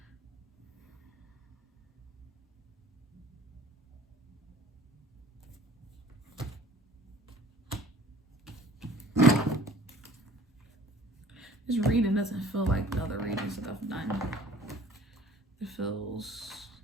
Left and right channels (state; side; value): normal; both; correlation 0.50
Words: This reading doesn't feel like the other readings that I've done. It feels,